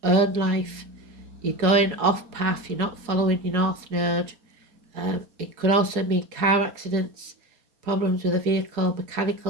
own life. you're going off path, you're not following your north node. It could also mean car accidents, problems with a vehicle,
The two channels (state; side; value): late; left; 4.2 ms